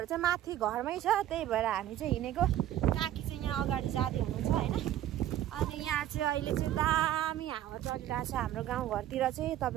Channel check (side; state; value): left; quieter; 12.5 dB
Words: चाहिँ माथि घरमै छ। त्यही भएर हामी चाहिँ हिँडेको। काकी चाहिँ यहाँ अगाडि जाँदै हुनुहुन्छ हैन। अनि यहाँ चाहिँ अहिले चाहिँ दामी हावा चलिरहेछ हाम्रो गाउँघरतिर चाहिँ,